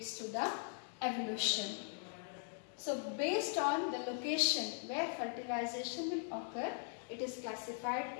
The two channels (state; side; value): silent; right; 51 dB below the other